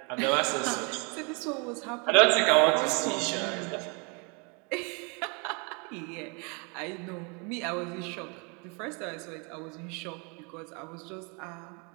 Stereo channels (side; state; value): left; quieter; 32.8 dB